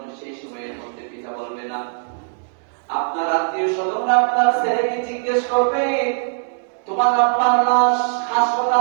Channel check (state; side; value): silent; left; digital silence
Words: সেই সময়ের মধ্যে পিতা বলবে না। আপনার আত্মীয় স্বজনরা আপনার ছেলেকে জিজ্ঞেস করবে, তোমার আব্বার লাশ